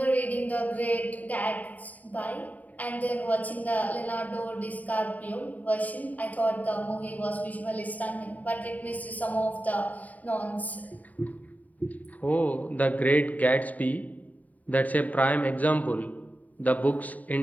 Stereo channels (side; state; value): right; late; 0.074 ms